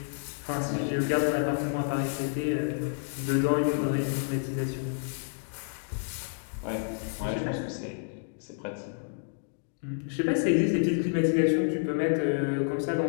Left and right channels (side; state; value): right; silent; digital silence